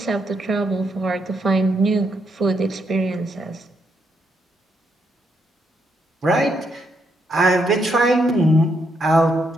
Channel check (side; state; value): both; normal; correlation 0.77